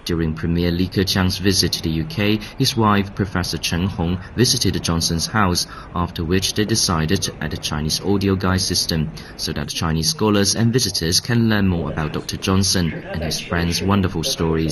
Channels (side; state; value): both; identical; correlation 1.00